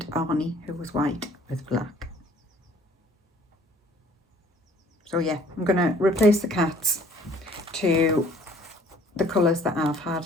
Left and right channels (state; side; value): normal; both; correlation 0.55